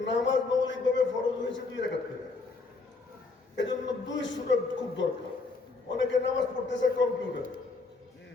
নামাজ মৌলিকভাবে ফরজ হয়েছে 2 রাকাত করে, এজন্য 2 সূরা খুব দরকার। অনেকে নামাজ পড়তেছে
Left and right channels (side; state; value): right; quieter; 3.9 dB